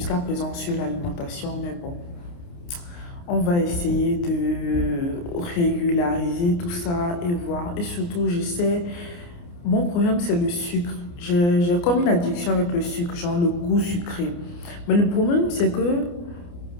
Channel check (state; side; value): late; right; 29 ms